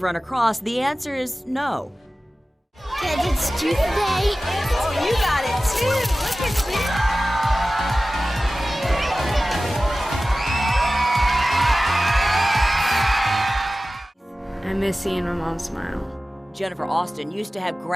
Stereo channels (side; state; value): both; normal; correlation 0.96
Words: run across, the answer is no. Kids, it's tooth day. Oh, you got it too. Look at I miss seeing my mom smile. Jennifer Austin used to have